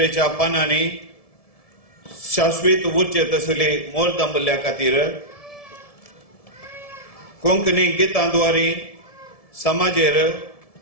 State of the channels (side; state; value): right; late; 1.7 ms